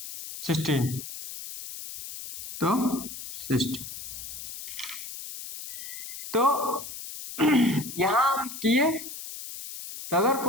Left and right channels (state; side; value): noise; left; hiss, 10 dB below the sound